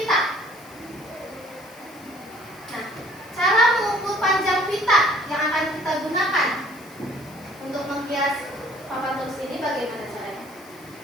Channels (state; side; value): noise; left; hiss, 24 dB below the sound